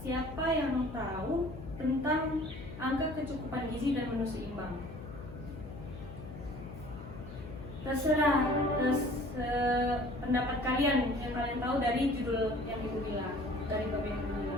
siapa yang tahu tentang angka kecukupan gizi dan menu seimbang? Terserah pendapat kalian yang kalian tahu dari judul yang Ibu bilang, dari bab yang Ibu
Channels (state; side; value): noise; left; hum, 12 dB below the sound